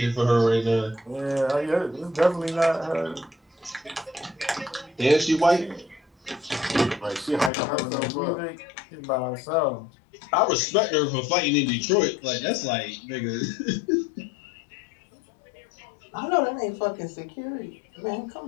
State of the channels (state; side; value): drops out; right; at 7.5 s